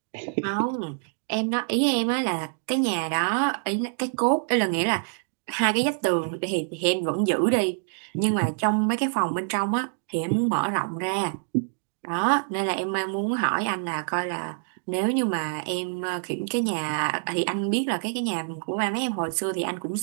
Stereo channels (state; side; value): silent; left; digital silence